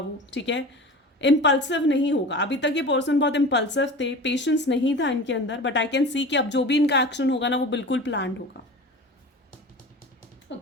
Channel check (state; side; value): normal; both; correlation 0.35